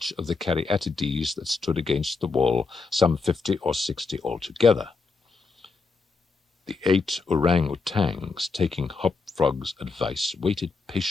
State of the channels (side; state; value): right; quieter; 4.3 dB